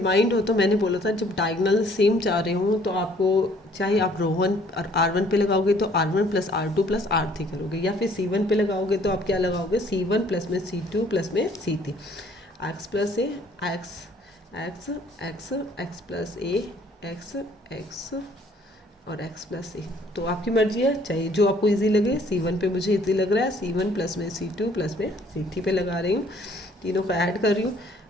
हो, तो मैंने बोला था जब डायगोनल सेम चाह रहे हो तो आपको चाहे आप रो 1 और r1 पे लगाओगे तो r1 plus r2 plus r3 करोगे, या फिर c1 पे लगाओगे तो आप क्या लगाओगे, c1 प्लस में c2 प्लस में c3, x plus A X plus A X और x प्लस ए। तो आपकी मर्जी है, चाहे जो आपको इजी लगे। c1 पे मुझे इजी लग रहा है, c1 प्लस में c2 प्लस में c3 पे लगा रही हूँ, तीनों को ऐड कर रही हूँ।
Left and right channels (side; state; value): both; normal; correlation 0.59